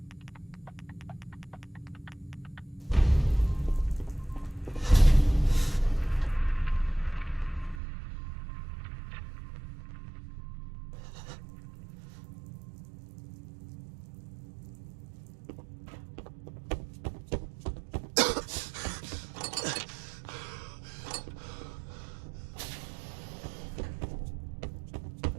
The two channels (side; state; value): left; drops out; at 7.8 s